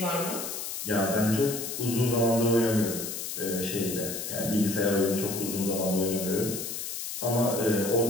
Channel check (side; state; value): left; noise; hiss, 6 dB below the sound